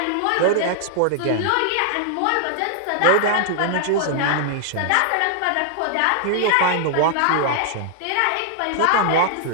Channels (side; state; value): both; different; correlation -0.01